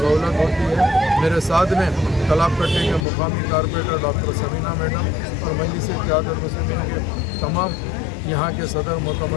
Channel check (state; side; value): drops out; right; at 3.1 s